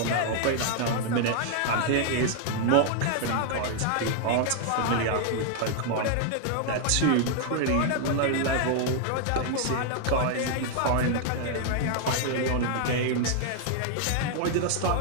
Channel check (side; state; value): both; different; correlation 0.00